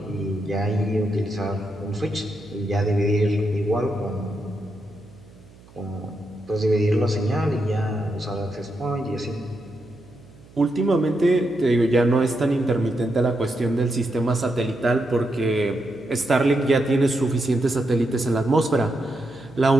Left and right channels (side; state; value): right; noise; hum, 24 dB below the sound